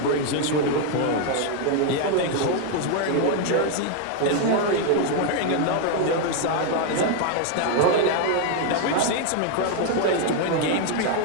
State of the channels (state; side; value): different; both; correlation 0.00